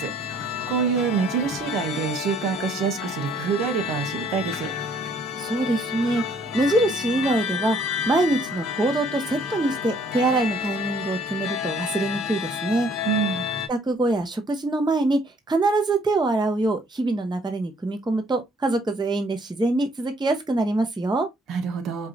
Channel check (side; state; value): both; normal; correlation 0.62